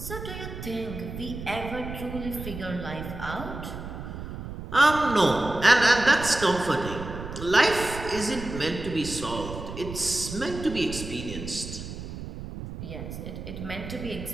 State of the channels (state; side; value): noise; right; rumble, 9 dB below the sound